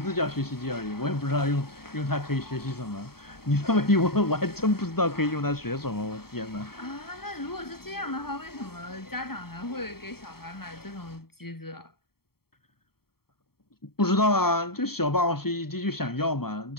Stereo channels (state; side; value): late; right; 0.95 ms